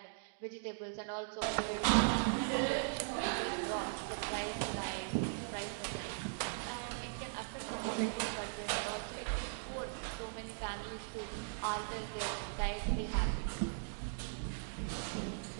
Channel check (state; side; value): silent; left; digital silence